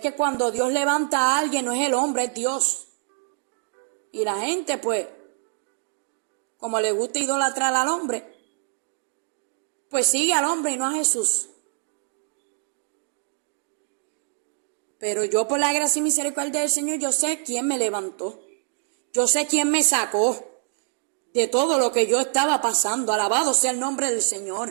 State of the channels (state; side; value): silent; left; digital silence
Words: cuando Dios levanta a alguien no es el hombre, es Dios. Y la gente, pues, como le gusta idolatrar al hombre, pues sigue al hombre y no a Jesús. Pero yo, por la gracia y misericordia del Señor, yo sé quién me levantó. Yo sé quién me sacó de todo lo que yo estaba pasando. Alabado sea el nombre del